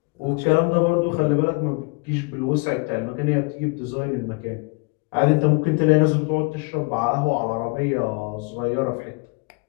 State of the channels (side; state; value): right; quieter; 30.8 dB